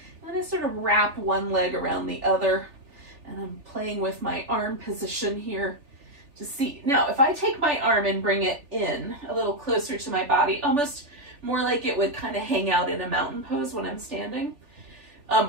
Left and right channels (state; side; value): late; left; 3.4 ms